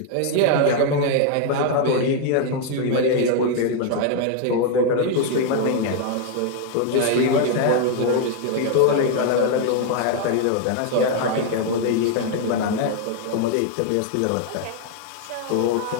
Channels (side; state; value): both; different; correlation 0.00